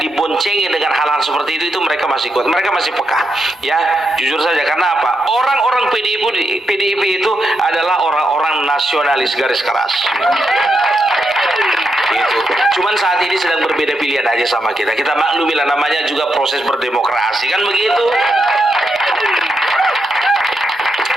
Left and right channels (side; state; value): both; normal; correlation 0.83